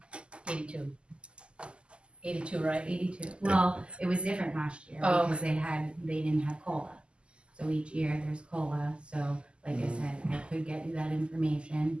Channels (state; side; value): late; left; 0.051 ms